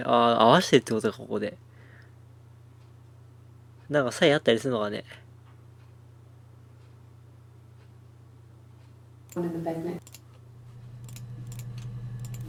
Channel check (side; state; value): both; identical; correlation 1.00